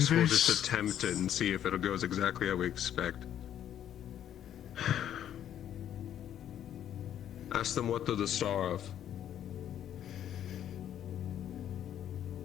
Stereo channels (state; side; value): quieter; right; 10.5 dB